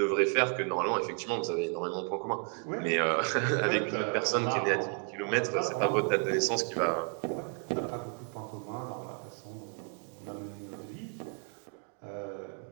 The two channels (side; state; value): left; quieter; 38.6 dB